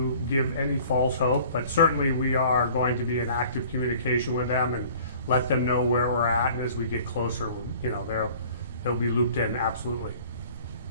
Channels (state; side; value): inverted; both; correlation -0.49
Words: give any false hope, but certainly we are going to be in active communication with them and let them know where we're at, and as we get closer, you know, they'll be looped in, absolutely.